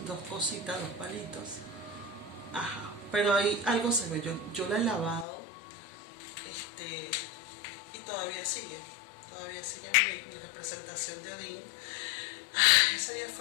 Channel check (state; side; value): drops out; right; at 5.2 s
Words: cositas, dos palitos. Ajá, pero ahí algo se ve. Yo la he lavado, y todavía sigue mi representación de Odín. Ese día